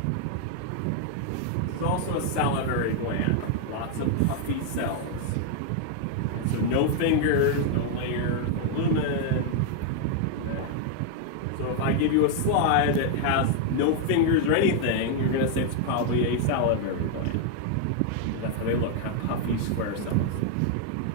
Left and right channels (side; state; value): both; different; correlation 0.00